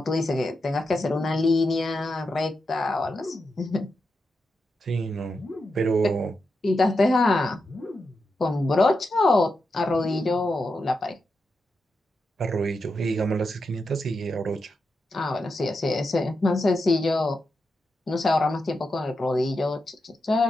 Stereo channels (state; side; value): normal; both; correlation 0.87